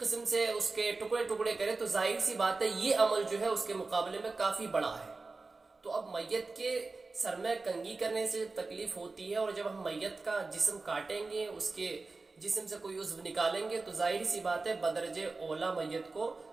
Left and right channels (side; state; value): left; quieter; 3.7 dB